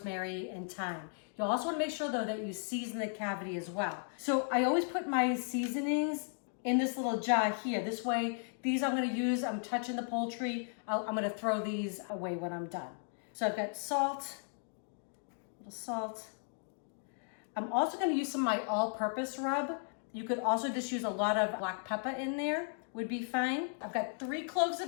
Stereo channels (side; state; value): right; silent; 54 dB below the other